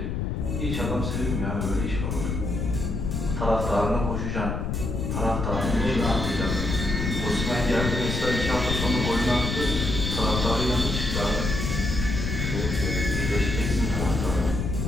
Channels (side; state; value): left; noise; rumble, 2 dB below the sound